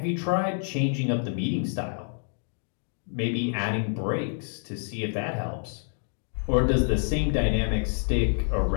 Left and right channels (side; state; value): right; silent; 60 dB below the other